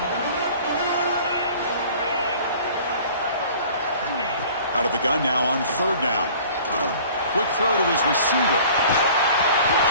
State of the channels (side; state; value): both; inverted; correlation -0.47